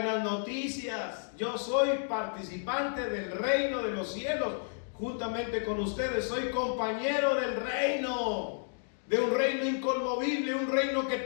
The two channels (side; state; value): right; silent; digital silence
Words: noticias. Yo soy participante del reino de los cielos, juntamente con ustedes. Soy compañero del reino, de un reino inconmovible, un reino que